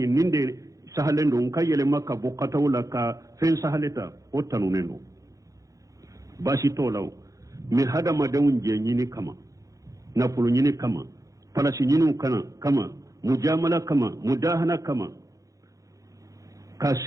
ninde sahalen do kayele makka bo katawla ka fen sahaleta o tanunendo bashi tolaw mi hada madawun je nyini kama na pulu nyini kama palashi nyini kama mujamala kama mudahana kama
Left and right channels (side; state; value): left; late; 0.16 ms